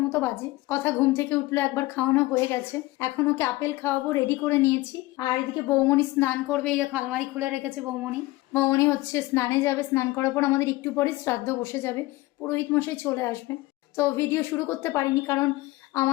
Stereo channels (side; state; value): right; quieter; 19.5 dB